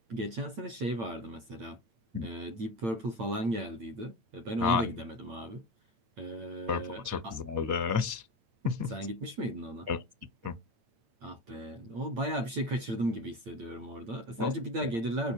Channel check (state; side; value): late; left; 8.8 ms